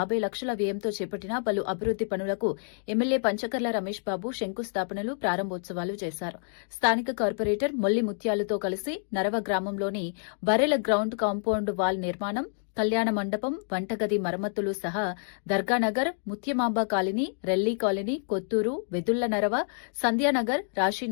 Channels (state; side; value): silent; right; digital silence